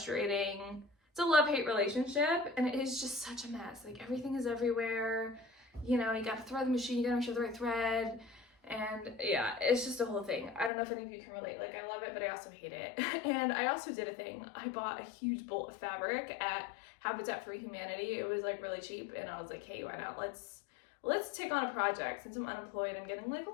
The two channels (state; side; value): drops out; right; at 10.7 s